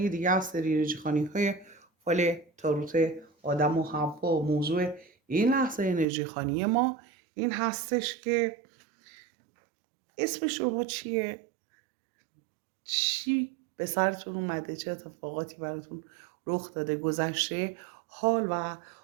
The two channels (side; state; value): left; drops out; at 6.1 s